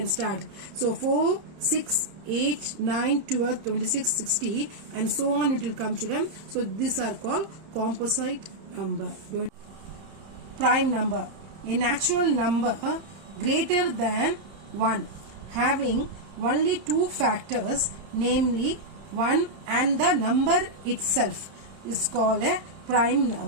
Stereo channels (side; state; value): left; late; 31 ms